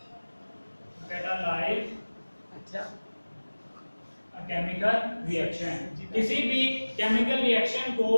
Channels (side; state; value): both; inverted; correlation -1.00